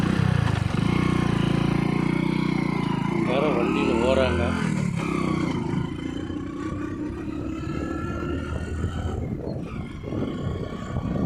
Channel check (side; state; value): both; identical; correlation 1.00